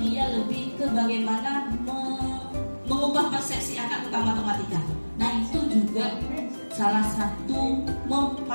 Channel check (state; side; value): inverted; both; correlation -1.00